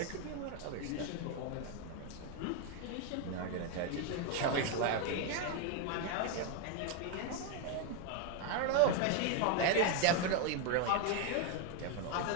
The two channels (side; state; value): both; different; correlation 0.01